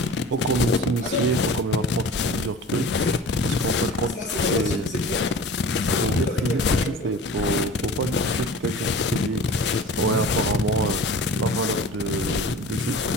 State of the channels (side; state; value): both; normal; correlation 0.40